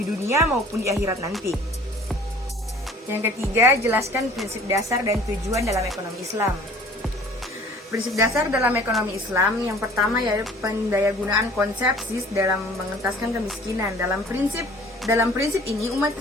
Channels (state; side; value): normal; both; correlation 0.50